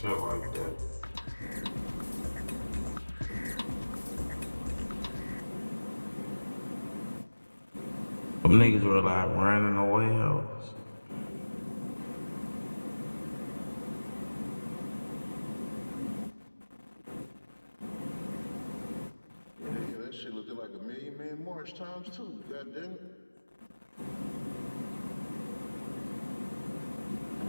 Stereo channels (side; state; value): both; inverted; correlation -1.00